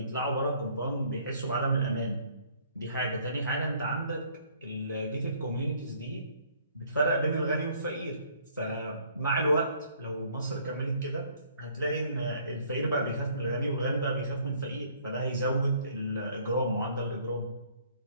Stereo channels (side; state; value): both; inverted; correlation -0.61